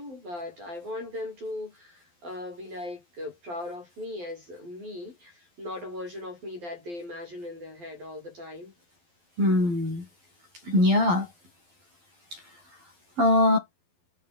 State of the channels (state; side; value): late; left; 12 ms